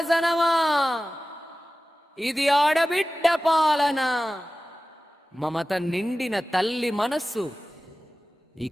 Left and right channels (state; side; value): normal; both; correlation 0.96